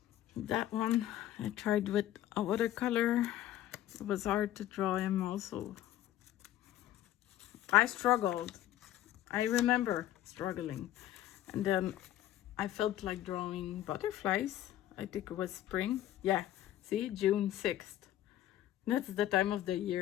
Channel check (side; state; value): right; quieter; 13.1 dB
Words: That one I tried with a watercolor. It was hard to draw him also. I struggled. I remember struggling. And then I felt like drawing butterflies. I think it was spring. Yeah, see, June 6th. That's the time of the